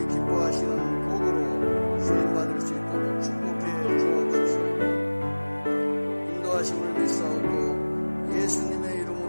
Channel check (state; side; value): inverted; both; correlation -1.00